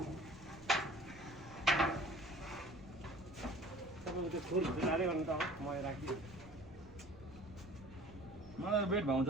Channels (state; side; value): noise; right; rumble, 21 dB below the sound